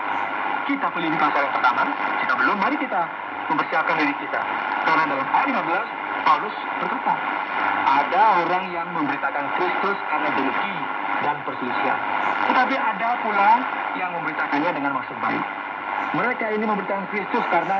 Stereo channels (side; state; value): both; identical; correlation 1.00